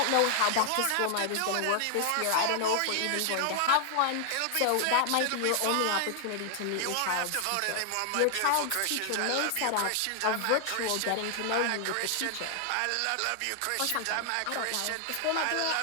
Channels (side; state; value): both; different; correlation 0.00